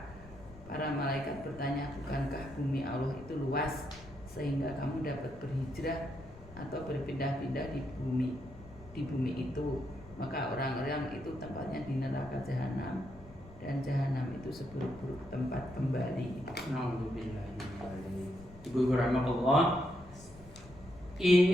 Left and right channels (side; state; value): left; noise; rumble, 20 dB below the sound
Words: Para malaikat bertanya, bukankah bumi Allah itu luas sehingga kamu dapat berhijrah atau berpindah-pindah di bumi itu? Maka orang-orang itu tempatnya di neraka jahanam, dan jahanam itu seburuk-buruk tempat kembali. Ibu rahmatullah,